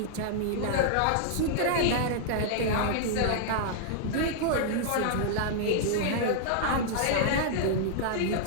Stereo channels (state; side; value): different; both; correlation -0.01